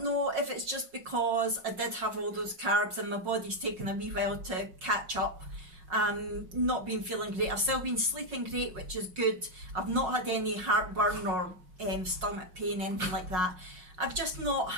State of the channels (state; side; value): late; left; 5.5 ms